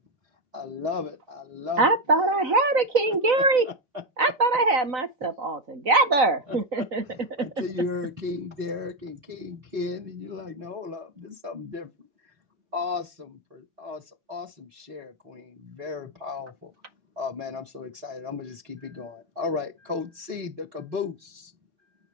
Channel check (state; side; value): late; left; 4.0 ms